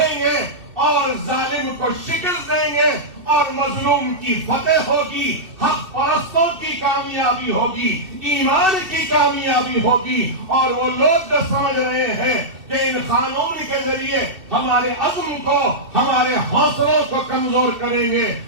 گے، اور ظالم کو شکست دیں گے، اور مظلوم کی فتح ہوگی، حق پرستوں کی کامیابی ہوگی، ایمان کی کامیابی ہوگی۔ اور وہ لوگ جو سمجھ رہے ہیں کہ ان قانون کے ذریعے ہمارے عزم کو، ہمارے حوصلوں کو کمزور کریں گے،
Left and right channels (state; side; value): late; left; 2.7 ms